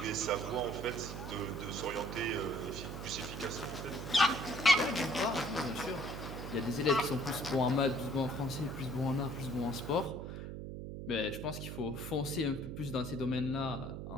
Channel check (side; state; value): right; noise; hum, 7 dB below the sound